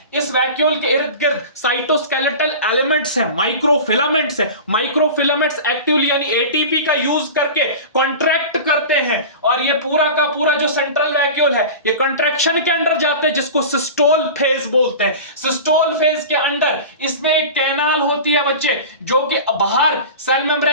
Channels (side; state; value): both; inverted; correlation -0.33